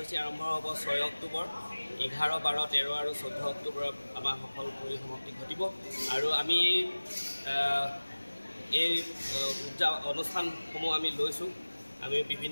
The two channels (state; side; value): inverted; both; correlation -1.00